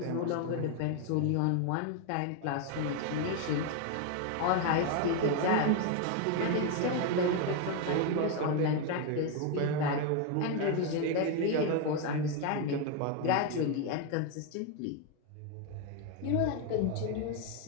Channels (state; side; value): different; both; correlation 0.01